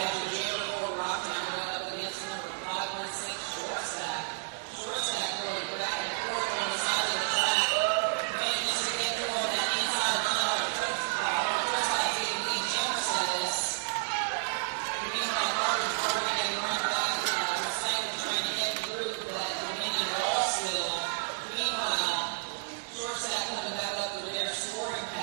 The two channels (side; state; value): left; silent; digital silence